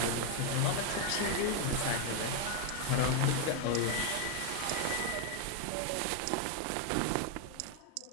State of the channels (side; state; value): both; different; correlation 0.01